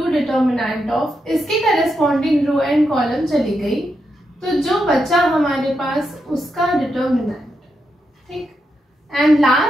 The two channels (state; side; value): normal; both; correlation 0.84